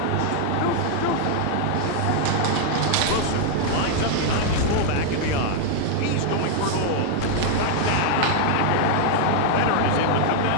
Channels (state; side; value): different; both; correlation 0.00